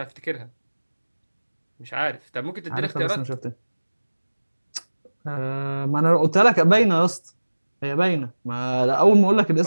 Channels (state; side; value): inverted; both; correlation -1.00